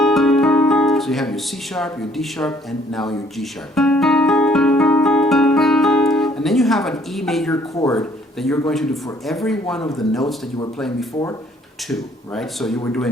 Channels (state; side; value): normal; both; correlation 0.62